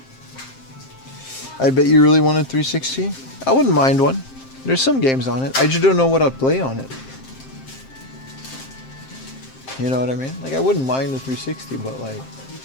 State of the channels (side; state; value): right; late; 7.6 ms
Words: I bet you really wanted 360. I wouldn't mind one. There's some games on it. I just don't know what I'd play on it. You know what I mean? Like, I wouldn't mind the 360, but like,